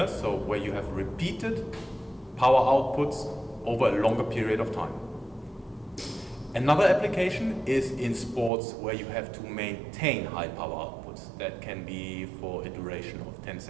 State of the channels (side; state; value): left; drops out; at 8.5 s